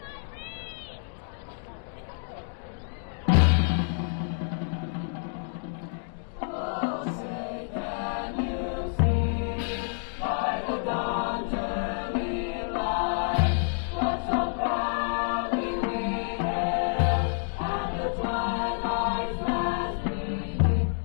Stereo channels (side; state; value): right; silent; 59 dB below the other